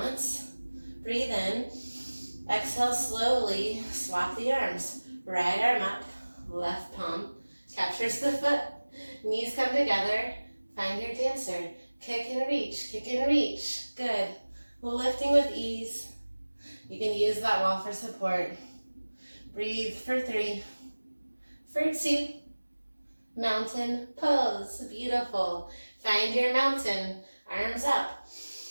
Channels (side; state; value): both; inverted; correlation -1.00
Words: Breathe in. Exhale slowly, swap the arms. Right arm up, left palm captures the foot. Knees come together. Find your dancer. Kick and reach, kick and reach. Good. Lifting with ease. You can use that wall for support. Breathe for 3, for 2, mountain pose. Beautiful. Find your mountain. Arms up.